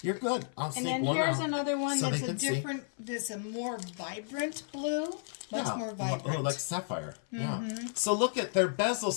You're good. I'll sneak one out. And then here's another one so that's a different, that's a more vibrant blue. Much more vibrant. Oh, like sapphire. Yeah. So look at their bezel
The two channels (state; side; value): silent; right; 56 dB below the other